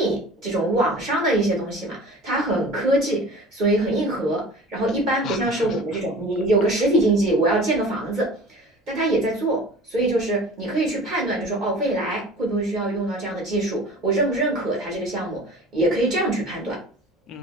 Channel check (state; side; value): normal; both; correlation 0.41